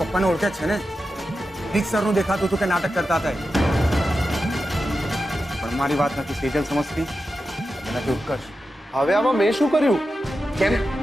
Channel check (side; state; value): both; normal; correlation 0.91